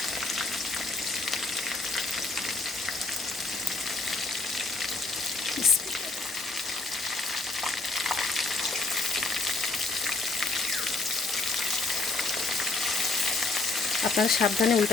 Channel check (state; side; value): quieter; right; 3.6 dB